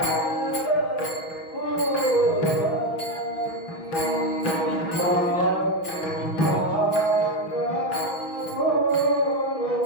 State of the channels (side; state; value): right; late; 6.0 ms